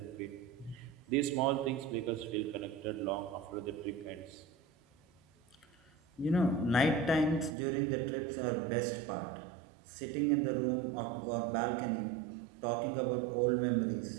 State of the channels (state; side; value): drops out; left; at 7.6 s